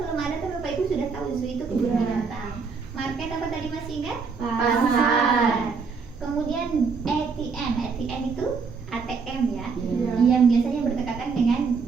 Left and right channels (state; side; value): quieter; left; 5.1 dB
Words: belum ada kan Bapak Ibu sudah tahu zoo itu kebun binatang. Market apa tadi masih ingat? Pasar. Kemudian ATM. ATM itu ATM ya. Ya. Yang biasanya berdekatan dengan